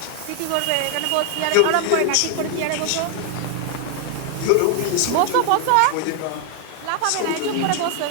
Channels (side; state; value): both; different; correlation 0.00